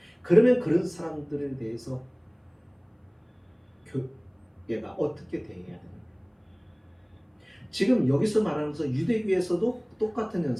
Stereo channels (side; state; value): both; identical; correlation 1.00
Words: 그러면 그런 사람들에 대해서 교회가 어떻게 대해야 됩니까? 지금 여기서 말하면서 유대교에서도 똑같은